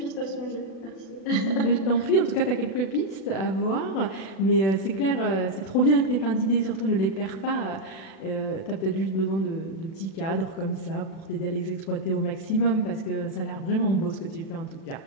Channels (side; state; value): right; late; 36 ms